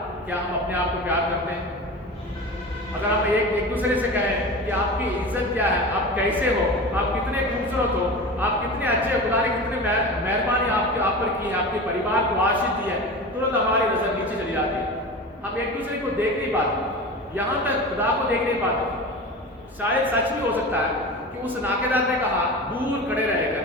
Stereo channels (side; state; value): both; normal; correlation 0.30